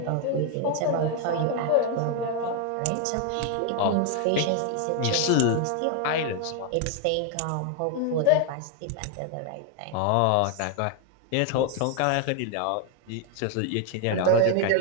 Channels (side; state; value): both; different; correlation 0.01